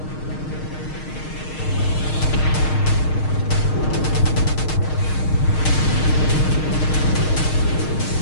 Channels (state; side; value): late; right; 6.5 ms